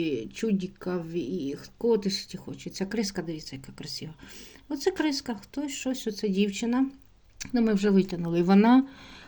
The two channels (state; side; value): identical; both; correlation 1.00